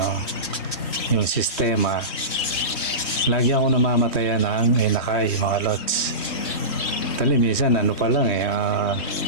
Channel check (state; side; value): late; right; 3.2 ms